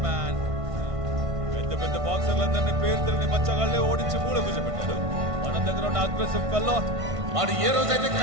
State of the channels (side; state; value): left; late; 1.5 ms